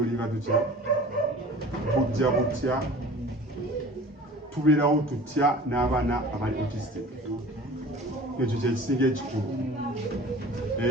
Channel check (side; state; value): both; normal; correlation 0.43